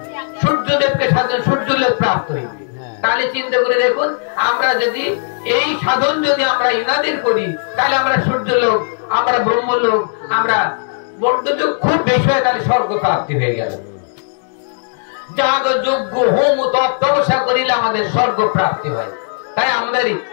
সূর্যদেবকে সাধন, সূর্য লোক প্রাপ্ত হইবে। তাহলে চিন্তা করে দেখুন, আমরা যদি এই সাধন যদি আমরা ইনাদের করি, তাহলে আমরা সূর্য লোক, আমরা ব্রহ্মলোক, আমরা বর্ধযোগ খুব বেশি হয়, তাহলে স্বর্গ প্রাপ্তি হয়ে গেল। যাগ যজ্ঞ হোম তপ তপস্যা করিলে আমাদের স্বর্গ প্রাপ্তি হয়। তাই আমাদের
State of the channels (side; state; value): right; silent; digital silence